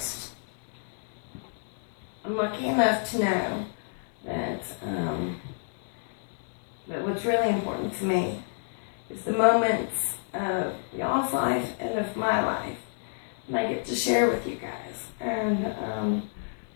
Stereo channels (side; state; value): right; silent; 58 dB below the other